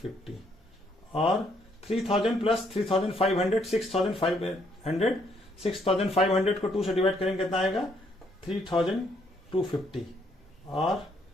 और 3000 प्लस 3500 6500, 6500 को 2 से डिवाइड करेंगे कितना आएगा 3250, और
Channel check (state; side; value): normal; both; correlation 0.70